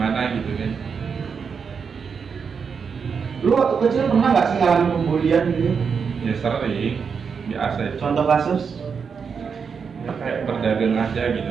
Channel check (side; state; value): left; quieter; 6.1 dB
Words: gitu kan. Lu waktu kecil pernah nggak sih ngalamin pembulian gitu? Ya sering, biasa itu. Contoh kasus? Ya kayak berdagang aja